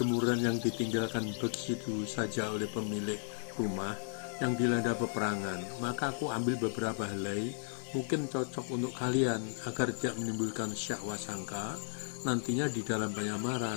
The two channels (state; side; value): silent; right; digital silence